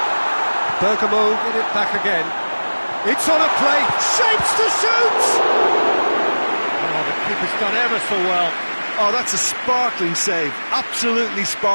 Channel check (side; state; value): both; inverted; correlation -1.00